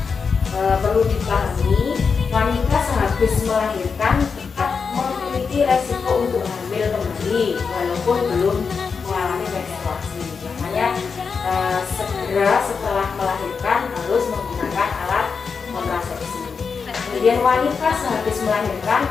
Perlu dipahami, wanita sehabis melahirkan tetap memiliki resiko untuk hamil kembali walaupun belum mengalami menstruasi. Makanya segera setelah melahirkan harus menggunakan alat kontrasepsi. Kemudian wanita sehabis melahirkan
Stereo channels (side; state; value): right; quieter; 5.5 dB